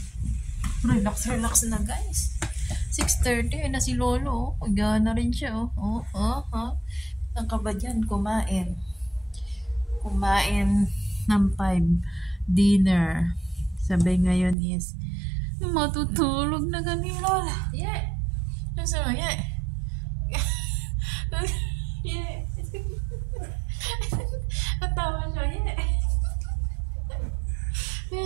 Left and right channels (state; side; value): drops out; left; at 14.6 s